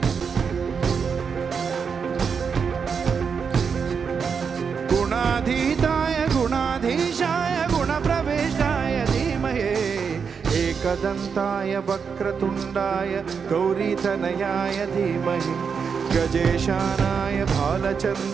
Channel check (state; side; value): quieter; left; 6.2 dB